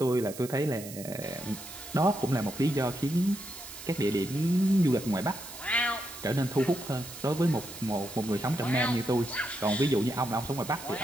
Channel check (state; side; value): noise; right; hiss, 13 dB below the sound